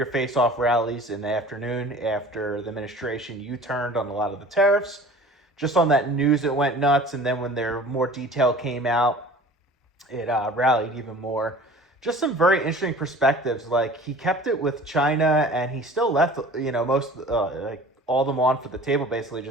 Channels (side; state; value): both; normal; correlation 0.44